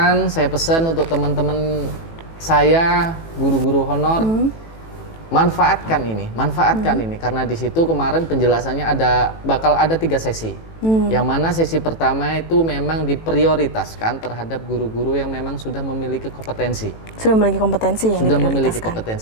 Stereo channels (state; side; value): late; right; 18 ms